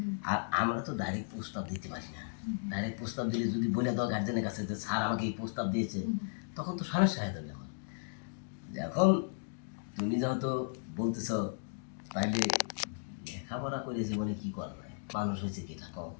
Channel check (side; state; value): right; silent; digital silence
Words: আর আমরা তো ডাইরেক্ট প্রস্তাব দিতে পারি না। ডাইরেক্ট প্রস্তাব দিলে যদি বলে দাও গার্জেনের কাছে যে স্যার আমাকে এই প্রস্তাব দিয়েছে, তখন তো সমস্যা হয়ে যাবে। এখন তুমি যেহেতু বলতেছ, তাইলে লেখাপড়া করে জীবনে কি করবে, মানুষ হয়েছে কি কম।